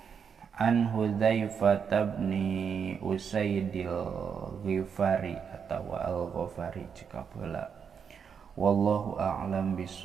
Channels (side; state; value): left; quieter; 6.8 dB